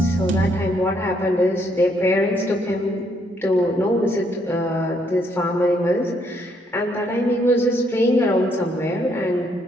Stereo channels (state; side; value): normal; both; correlation 0.71